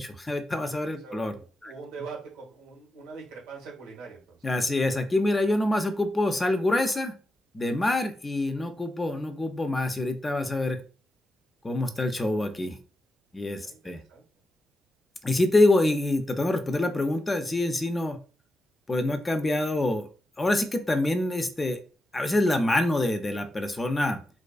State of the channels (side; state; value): both; normal; correlation 0.89